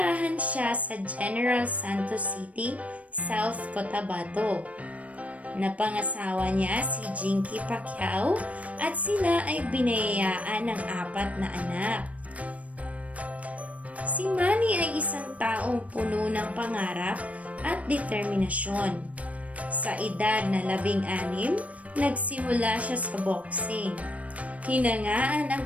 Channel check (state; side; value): late; left; 0.067 ms